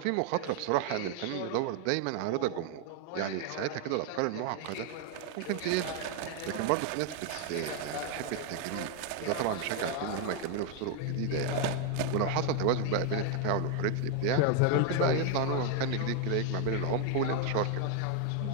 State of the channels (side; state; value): both; different; correlation 0.01